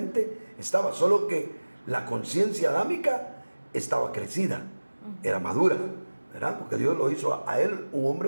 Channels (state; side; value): inverted; both; correlation -1.00